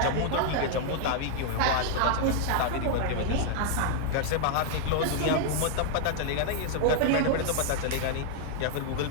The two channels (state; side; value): different; both; correlation 0.00